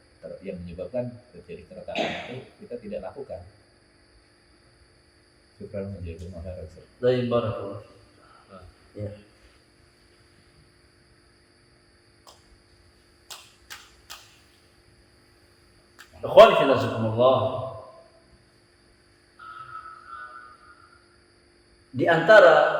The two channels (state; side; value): identical; both; correlation 1.00